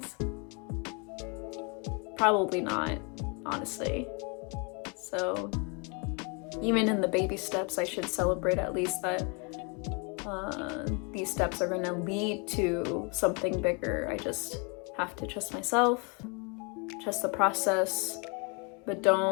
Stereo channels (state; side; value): quieter; right; 33.5 dB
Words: Probably not, honestly. So even in the baby steps, I should celebrate at least that these steps are going to lead to something bigger. I just have to trust myself, trust the process, but